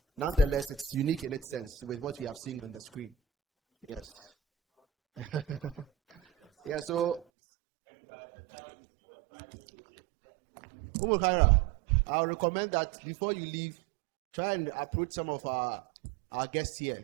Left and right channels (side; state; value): left; drops out; at 7.2 s